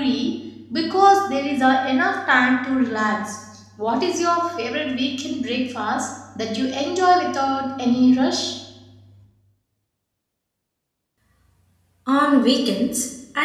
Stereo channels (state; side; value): identical; both; correlation 1.00